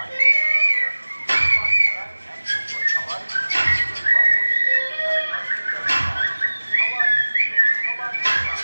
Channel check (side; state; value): both; inverted; correlation -1.00